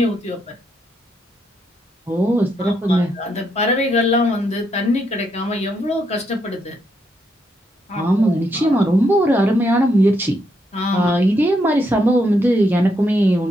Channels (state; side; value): normal; both; correlation 0.77